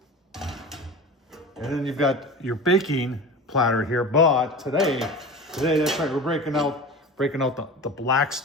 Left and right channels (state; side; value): normal; both; correlation 0.33